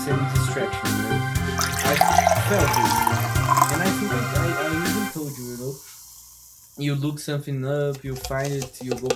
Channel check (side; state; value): both; identical; correlation 1.00